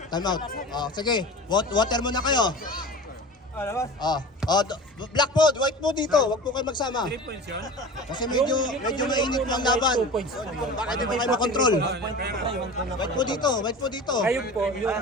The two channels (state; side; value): normal; both; correlation 0.35